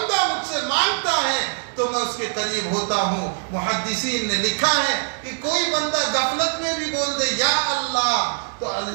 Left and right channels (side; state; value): left; silent; 63 dB below the other